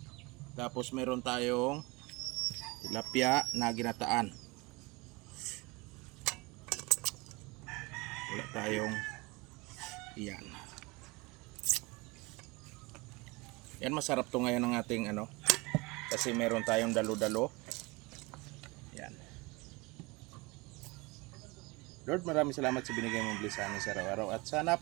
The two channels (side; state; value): left; quieter; 25.1 dB